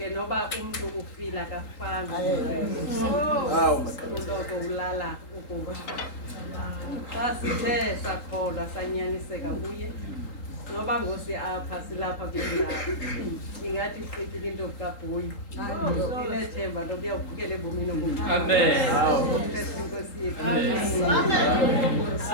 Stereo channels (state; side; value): late; right; 3.8 ms